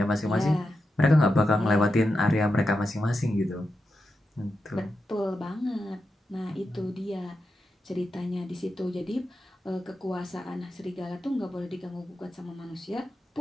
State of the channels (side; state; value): both; normal; correlation 0.88